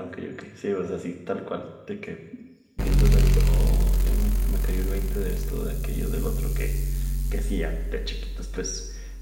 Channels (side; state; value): both; identical; correlation 1.00